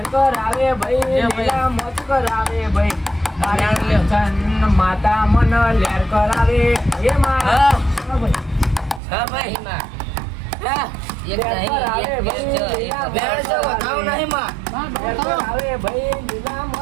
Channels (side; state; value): left; drops out; at 9.0 s